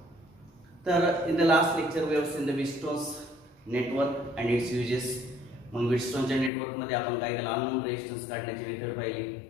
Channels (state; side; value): drops out; right; at 6.5 s